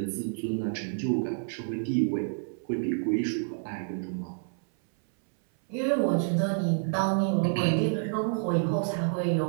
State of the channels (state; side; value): silent; left; 59 dB below the other